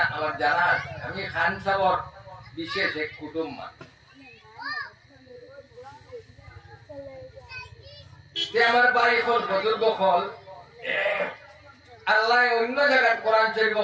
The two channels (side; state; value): both; identical; correlation 1.00